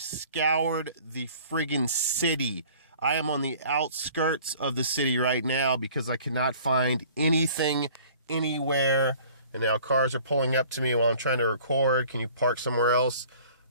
scoured the friggin' city. I am on the outskirts of the city right now because I cannot find anything anywhere. And now cars are pulling up to me while I'm trying to record. Can you park somewhere else?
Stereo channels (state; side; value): inverted; both; correlation -0.50